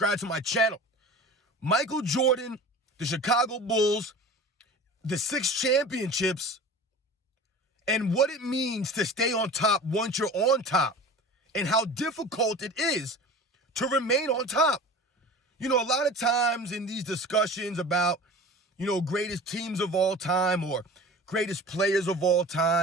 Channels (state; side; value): normal; both; correlation 0.38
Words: to my channel. Michael Jordan, the Chicago Bulls, the 6 championships, and what it means to stay on top once you're on top, and how difficult it is to remain on top. You know, a lot of times in these discussions about, greatest teams of all time or greatest players of all